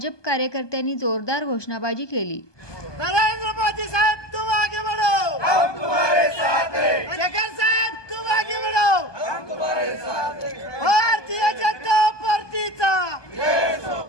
कार्यकर्त्यांनी जोरदार घोषणाबाजी केली। नरेंद्र मोदी साहब तुम आगे बढ़ो, हम तुम्हारे साथ हैं। शेखर साहब तुम आगे बढ़ो, हम तुम्हारे साथ हैं। भारतीय जनता पार्टीचा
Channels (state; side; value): late; right; 1.2 ms